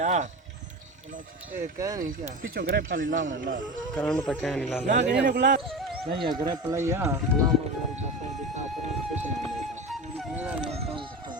ए कह नहीं क्या पिछो ग्रेप खाली लावना ला करंट तो क्या नहीं ला ना के ने गुला नहीं है ग्रेप लइया गुलाम और बस दिखा पर कुछ नहीं मेरा काम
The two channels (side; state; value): both; normal; correlation 0.27